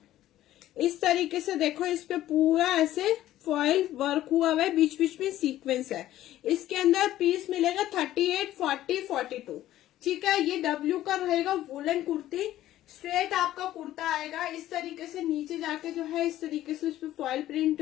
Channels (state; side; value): quieter; right; 13.8 dB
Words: इस तरीके से। देखो इस पे पूरा ऐसे फॉइल वर्क हुआ हुआ है, बीच बीच में सीक्वेंस है। इसके अंदर पीस मिलेगा 38, 40, 42। ठीक है, ये डब्ल्यू का रहेगा वुलन कुर्ती। स्ट्रेट आपका कुर्ता आएगा इस तरीके से, नीचे जाके जो है इस तरीके से उस पर फॉइल प्रिंट